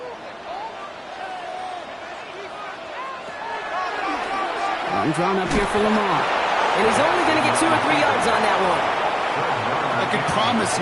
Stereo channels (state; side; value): identical; both; correlation 1.00